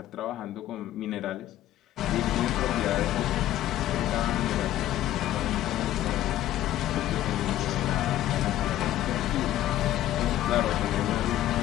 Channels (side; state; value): right; quieter; 13.4 dB